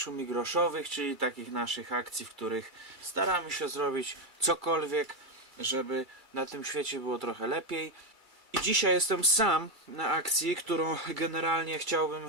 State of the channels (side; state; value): left; late; 2.3 ms